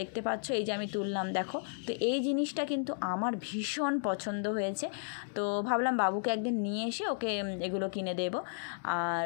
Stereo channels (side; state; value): right; silent; digital silence